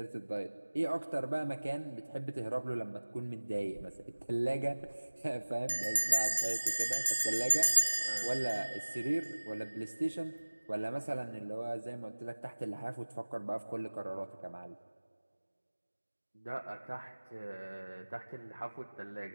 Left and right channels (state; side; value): inverted; both; correlation -1.00